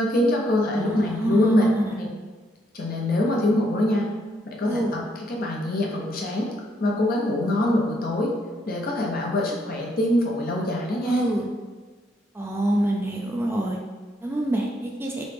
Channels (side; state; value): both; normal; correlation 0.74